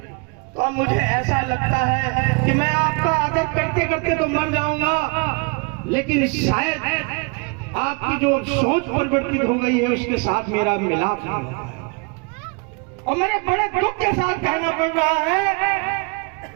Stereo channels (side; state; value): left; quieter; 31.9 dB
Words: तो अब मुझे ऐसा लगता है कि मैं आपका आदर करते करते तो मर जाऊंगा, लेकिन शायद आपकी जो सोच परिवर्तित हो गई है उसके साथ मेरा मिलाप नहीं होता। और मेरे बड़े दुख के साथ कहना पड़ रहा है